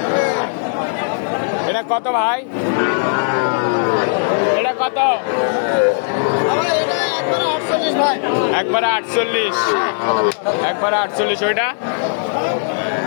এটা কত ভাই? এটা কত? একবারে 48। একবারে 48। ওইটা?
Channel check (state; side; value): silent; right; digital silence